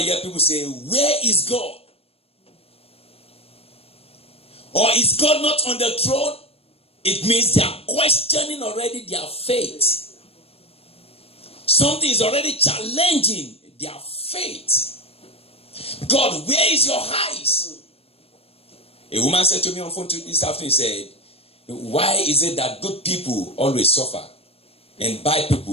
hear people say, where is God? Or is God not on the throne? It means they are questioning already their faith. Something is already challenging their faith. God, where is your eyes? A woman said to me on phone this afternoon, said, why is it that good people always suffer and bad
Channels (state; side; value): late; right; 0.28 ms